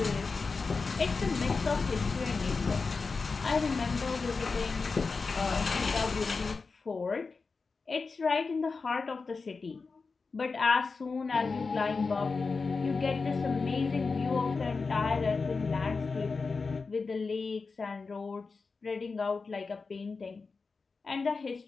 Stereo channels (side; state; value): right; quieter; 4.4 dB